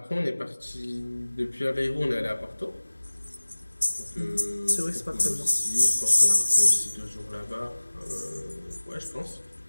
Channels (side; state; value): both; inverted; correlation -1.00